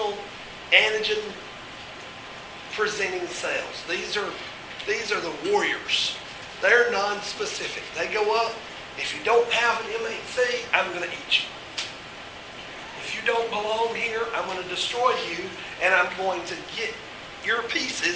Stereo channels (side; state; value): both; identical; correlation 1.00